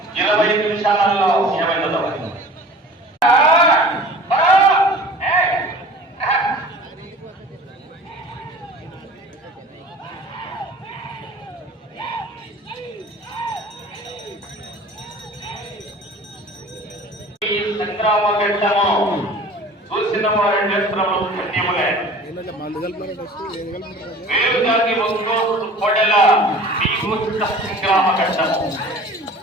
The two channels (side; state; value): both; normal; correlation 0.43